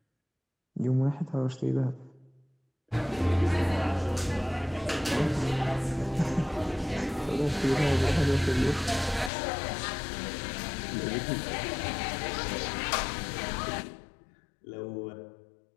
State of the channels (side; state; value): right; drops out; at 9.3 s